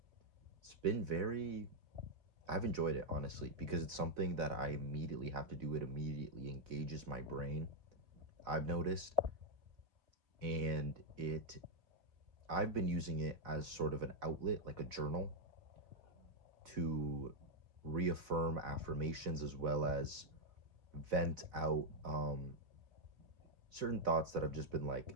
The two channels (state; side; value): late; left; 4.0 ms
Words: It's been I've enjoyed it, honestly, because it's something that I immediately have to do. It immediately engages my brain, I've noticed. And I've been using it as sort of an outlet, like a journal, to reaffirm affirmations as well as vent out certain thoughts that have just been like